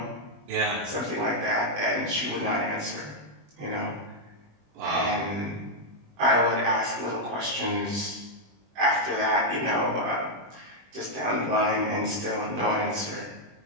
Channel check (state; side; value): late; left; 20 ms